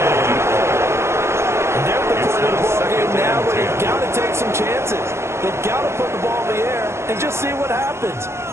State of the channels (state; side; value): late; left; 0.13 ms